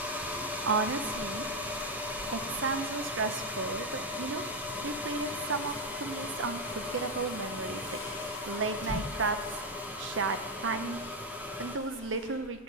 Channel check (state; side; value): normal; both; correlation 0.06